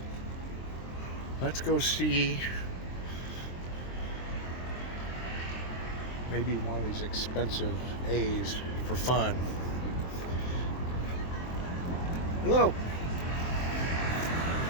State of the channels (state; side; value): late; right; 23 ms